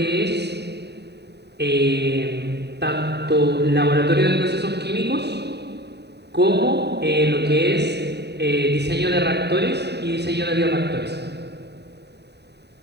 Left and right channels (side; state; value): left; late; 0.49 ms